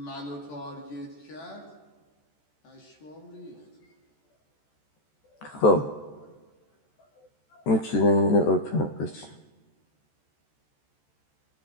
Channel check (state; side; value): late; right; 14 ms